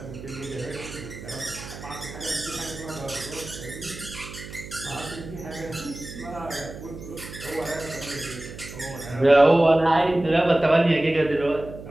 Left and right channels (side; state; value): right; noise; hum, 13 dB below the sound